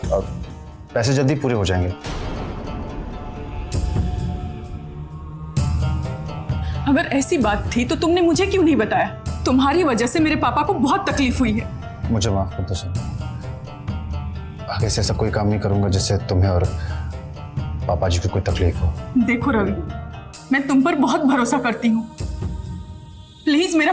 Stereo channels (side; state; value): both; identical; correlation 1.00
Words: और पैसे जल्दी पूरे हो जाएंगे। अगर ऐसी बात थी तो तुमने मुझे क्यों नहीं बताया? तुम्हारी वजह से मेरे पापा को बहुत तकलीफ हुई है। मुझे माफ कर दो सर, आगे से ऐसा कोई काम नहीं करूंगा जिससे तुम्हें और पापा जी को कोई तकलीफ हो। देखो रवि, मैं तुम पर बहुत भरोसा करती हूँ, प्लीज मेरा